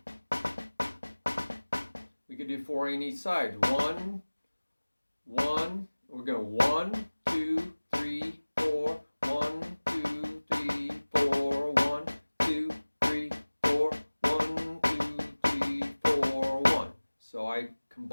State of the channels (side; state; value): both; inverted; correlation -1.00